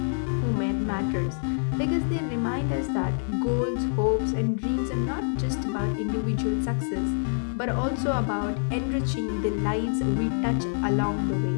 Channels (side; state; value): right; silent; digital silence